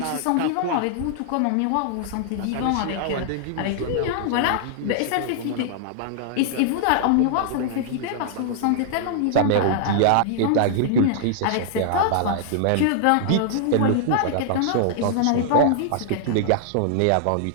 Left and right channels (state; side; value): different; both; correlation -0.01